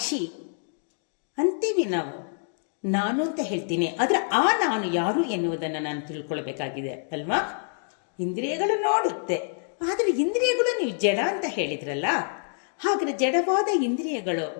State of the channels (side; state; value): right; silent; digital silence